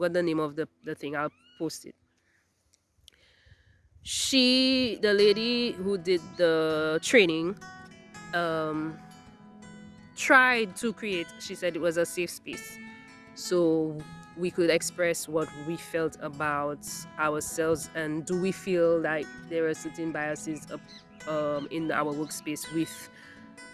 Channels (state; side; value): identical; both; correlation 1.00